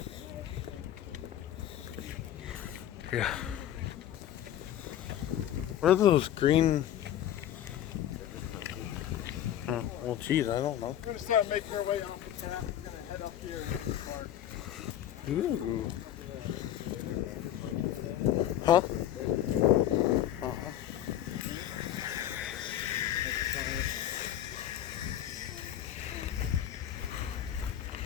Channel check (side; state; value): right; quieter; 11.6 dB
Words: Yeah. What are those green? Well, geez, I don't know. We're gonna start making our way off the tap. We're gonna head up here and get the park. Ooh. Huh?